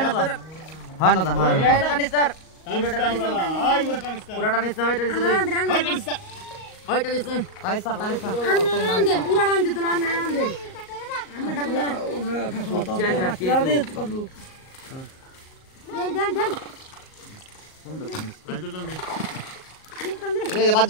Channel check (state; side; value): late; right; 38 ms